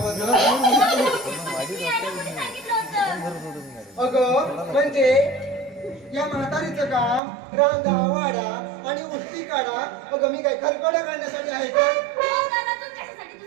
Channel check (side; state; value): left; drops out; at 7.2 s